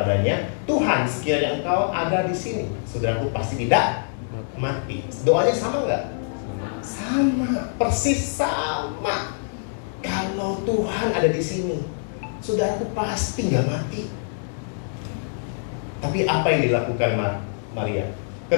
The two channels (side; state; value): right; silent; digital silence